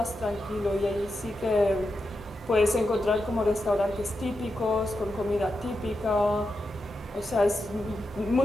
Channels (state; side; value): normal; both; correlation 0.88